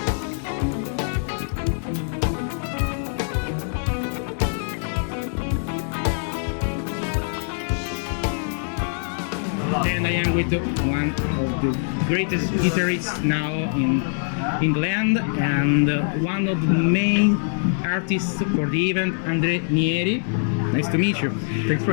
And I am with one of the greatest guitarists now in England and one of the main artists for the event, Andre Nieri. Nice to meet you. Thanks for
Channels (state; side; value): silent; right; 60 dB below the other